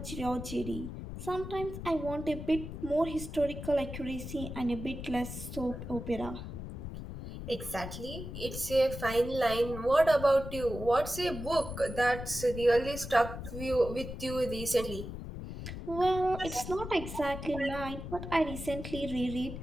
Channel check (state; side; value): noise; left; rumble, 8 dB below the sound